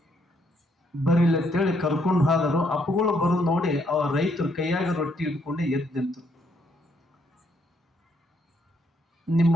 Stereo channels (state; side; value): normal; both; correlation 0.72